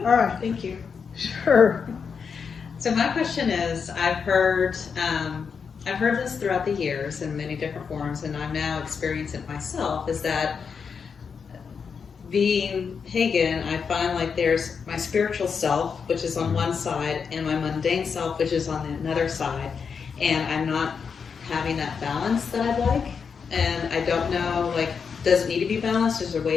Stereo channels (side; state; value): right; quieter; 6.1 dB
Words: All right. Thank you. Sure. So my question is, I've heard this throughout the years in many different forms, and I'm now experiencing it myself, is that being pagan, I find like there's my spiritual self, which is on one side, and my mundane self, which is on another side, and I'm not having that balance that I'd like, and I don't know, like, does it need to be balanced? Is there a way